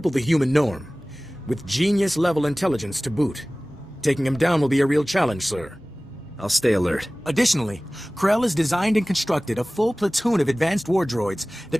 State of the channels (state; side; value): normal; both; correlation 0.98